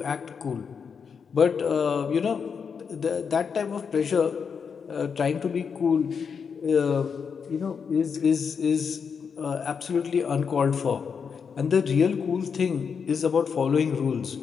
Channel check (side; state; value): right; quieter; 6.3 dB